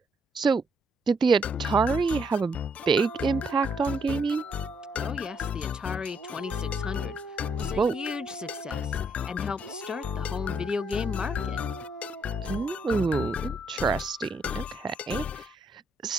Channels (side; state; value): both; normal; correlation 0.73